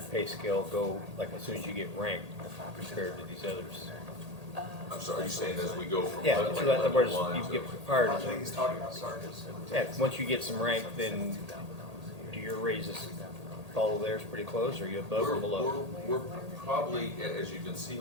pay scale go, like as soon as you get ranked compared to these others? I'm sorry, are you saying as we go from Yeah, like in other level words, 1 you to? get hired, I think he's talking about sergeants. yeah, once you get some rank, then do your raises follow theirs pretty close, or are you above or below? We're probably, as you can see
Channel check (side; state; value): left; late; 1.8 ms